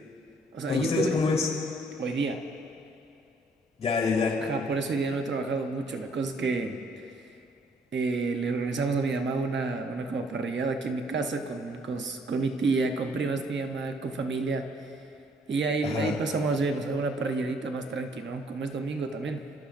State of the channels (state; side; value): normal; both; correlation 0.64